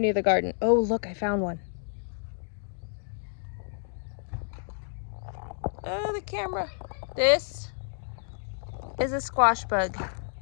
the garden. Oh, look, I found one. Oh, the camera. This is a squash bug,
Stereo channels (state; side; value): silent; right; digital silence